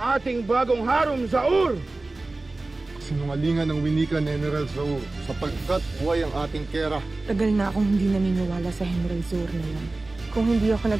bagong harom Zaur. Sinungalingan ng winika ni General Zaur sapagkat buhay ang ating Kera. Tagal na akong hindi naniniwala sa General Zaur na yan. Kung hindi ako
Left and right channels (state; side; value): quieter; left; 3.1 dB